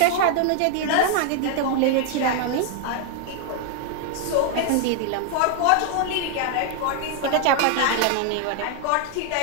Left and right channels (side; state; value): both; different; correlation 0.00